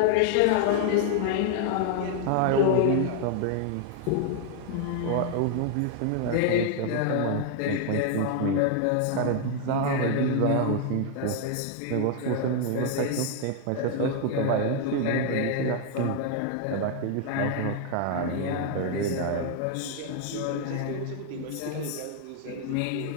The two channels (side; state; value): both; different; correlation 0.00